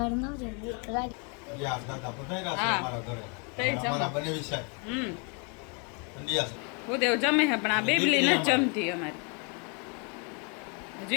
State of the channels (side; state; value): right; quieter; 35.5 dB